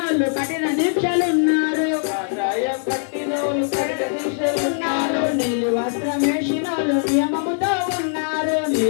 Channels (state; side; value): silent; right; 65 dB below the other